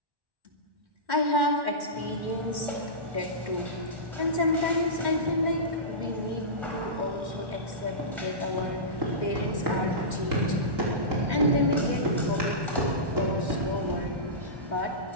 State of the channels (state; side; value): late; left; 1.2 ms